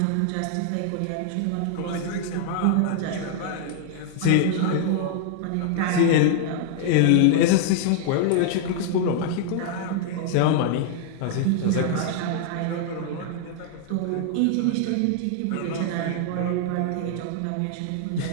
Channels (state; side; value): different; both; correlation -0.01